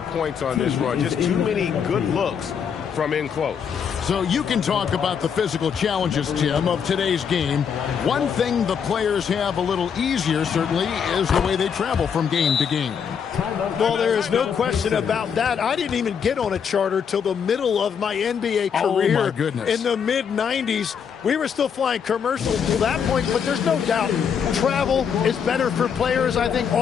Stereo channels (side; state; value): right; quieter; 7.2 dB